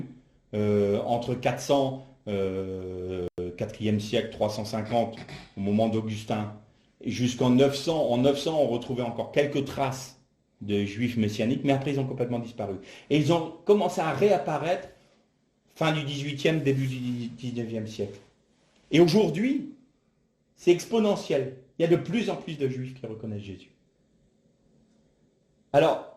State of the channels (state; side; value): identical; both; correlation 1.00